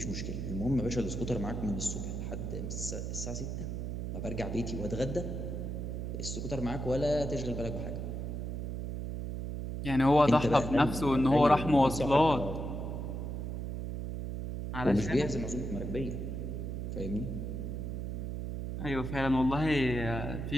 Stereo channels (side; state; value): right; noise; hum, 4 dB below the sound